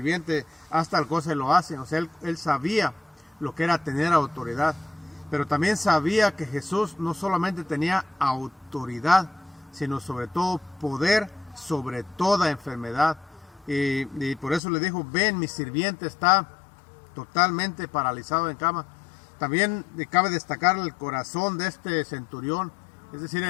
haz tal cosa y lo hace. O sea, él sabía lo que era tener autoridad, pero también sabía que Jesús no solamente tenía autoridad, sino sobre todo poder sobre toda enfermedad. Y por eso le dijo, ven, mi sirviente está totalmente paralizado en cama. También cabe destacar el corazón de este centurión, es decir,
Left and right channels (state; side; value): drops out; right; at 14.6 s